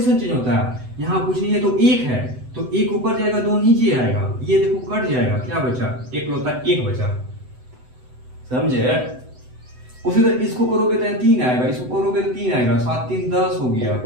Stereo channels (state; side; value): late; left; 7.9 ms